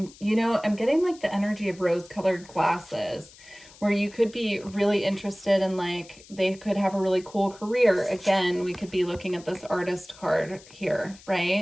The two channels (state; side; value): noise; left; hiss, 22 dB below the sound